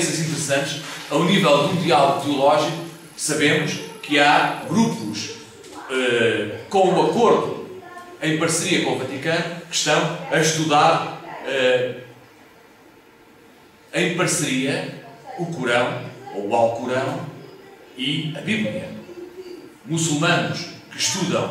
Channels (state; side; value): identical; both; correlation 1.00